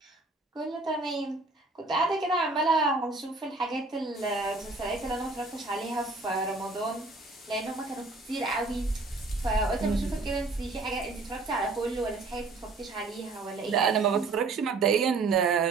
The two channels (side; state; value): left; quieter; 3.6 dB